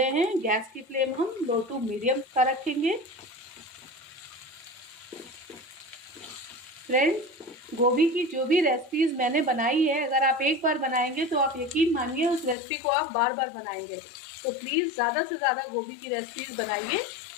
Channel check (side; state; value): right; drops out; at 12.6 s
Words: हैं। गैस की फ्लेम हम लो टू मीडियम का रखेंगे। फ्रेंड्स, गोभी की जो भी रेसिपीज़ मैंने बनाई है, अगर आप एक बार बनाएंगे तो आप यकीन मानिए उस रेसिपी को आप बार बार बनाएंगे। तो प्लीज़ ज़्यादा से ज़्यादा गोभी की रेसिपीज़ बनाइए